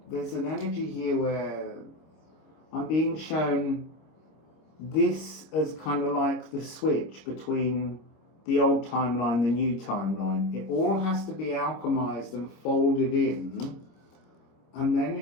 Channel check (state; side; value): late; right; 26 ms